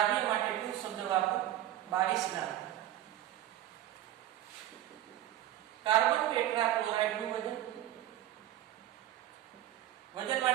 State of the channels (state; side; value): quieter; left; 13.2 dB